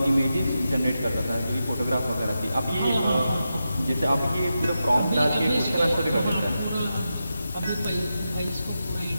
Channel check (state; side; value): inverted; both; correlation -0.89